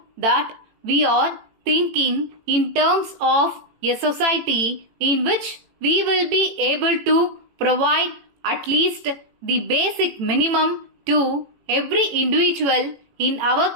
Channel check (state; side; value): late; left; 18 ms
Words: that we are thinking in terms of a society in which we will be able to provide at least the basic minimum to every individual in our